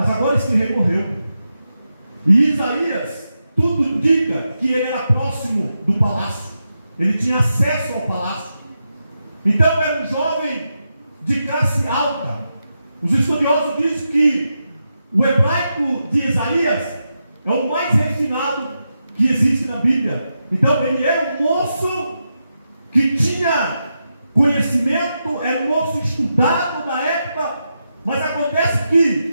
agora esse rei morreu. E Isaías, tudo indica que ele era próximo do palácio. Ele tinha acesso ao palácio. Então era um jovem de classe alta. Os estudiosos dizem que o hebraico de Isaías é o mais refinado que existe na Bíblia. Então ele era um moço que tinha conhecimento, era um moço estudado na época. Mas acontece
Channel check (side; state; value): both; inverted; correlation -0.87